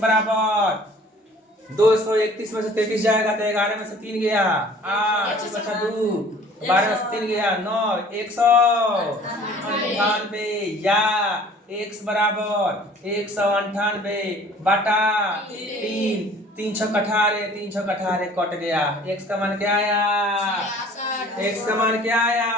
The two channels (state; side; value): normal; both; correlation 0.50